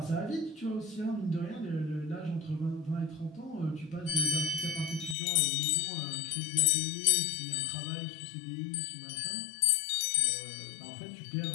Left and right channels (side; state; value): right; drops out; at 5.2 s